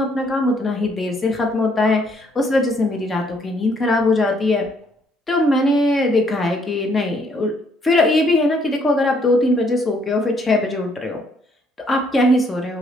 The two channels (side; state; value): both; normal; correlation 0.68